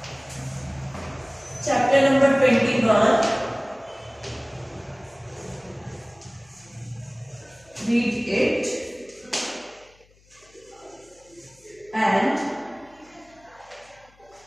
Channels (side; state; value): left; noise; hum, 30 dB below the sound